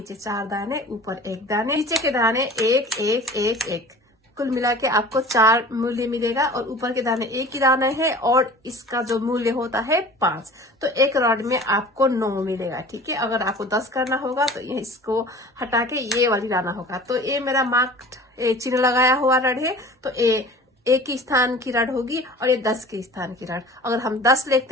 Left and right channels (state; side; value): normal; both; correlation 0.43